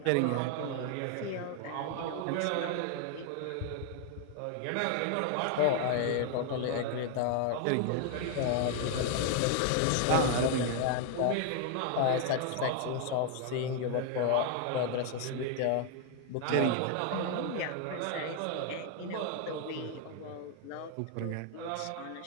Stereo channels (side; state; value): both; different; correlation 0.00